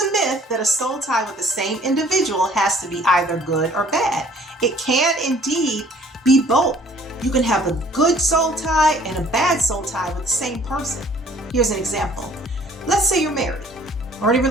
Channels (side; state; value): both; normal; correlation 0.56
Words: myth that a soul tie with the same individual has to be either good or bad. It can indeed be both. You can have a good soul tie and a bad soul tie with the same person. Here's an example. Let's say you're married or in a